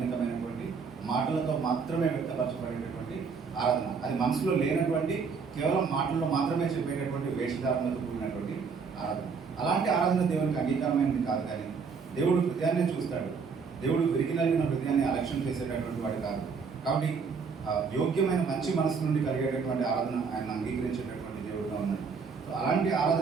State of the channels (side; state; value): left; quieter; 5.5 dB